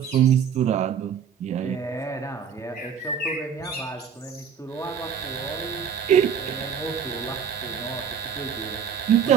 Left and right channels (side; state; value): left; quieter; 7.6 dB